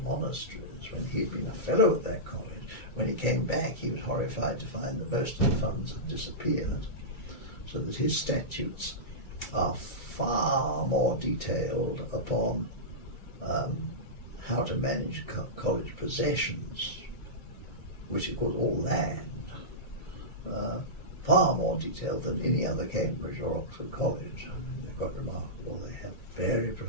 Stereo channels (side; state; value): right; late; 2.3 ms